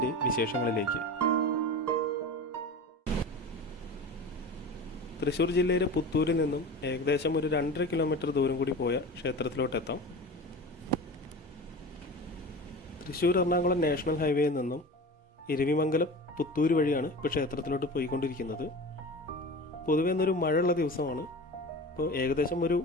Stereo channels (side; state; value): both; normal; correlation 0.33